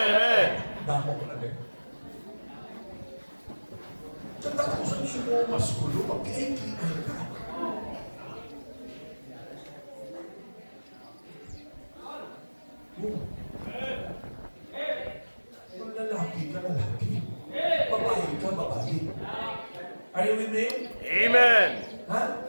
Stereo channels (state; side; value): inverted; both; correlation -1.00